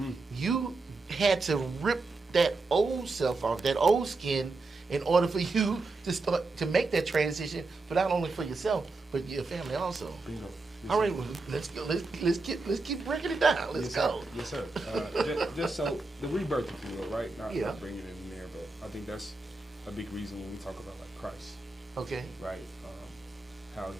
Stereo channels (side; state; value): left; quieter; 3.5 dB